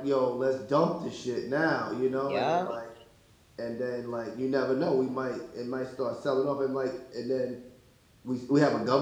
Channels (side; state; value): both; identical; correlation 1.00